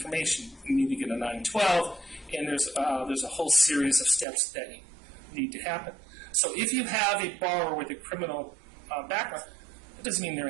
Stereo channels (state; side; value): drops out; left; at 4.2 s